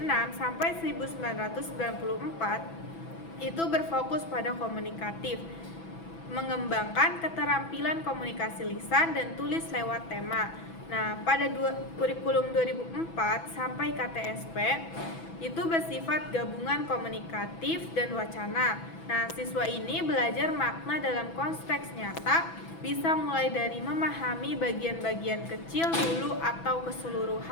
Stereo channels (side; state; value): right; late; 6.1 ms